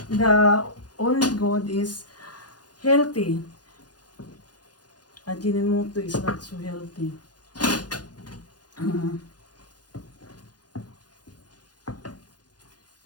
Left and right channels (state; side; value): late; right; 0.69 ms